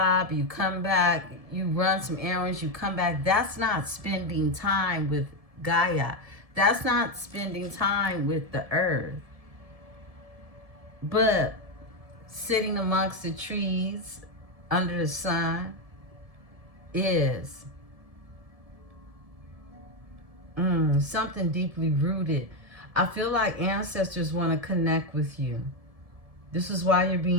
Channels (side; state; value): left; late; 1.7 ms